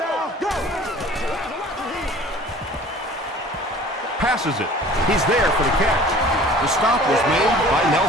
Go. Passes it. He's there for the catch. The stop was made by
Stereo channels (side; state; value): both; normal; correlation 0.47